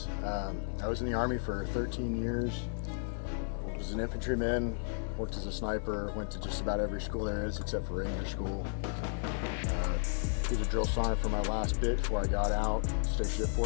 I was in the Army for 13 years. I was an infantryman, worked as a sniper, went to just about every school there is except for Ranger School. Was a drill sergeant for my last bit before I got out, stationed at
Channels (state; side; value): silent; right; digital silence